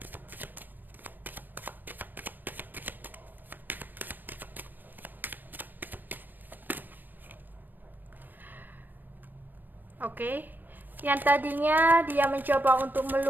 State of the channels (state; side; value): late; left; 0.091 ms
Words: Oke, yang tadinya dia mencoba untuk